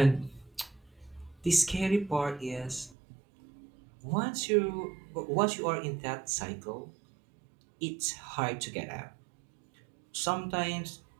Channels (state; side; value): drops out; left; at 3.0 s